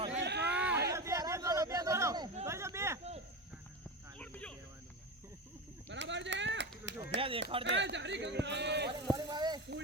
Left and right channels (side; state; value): both; normal; correlation 0.21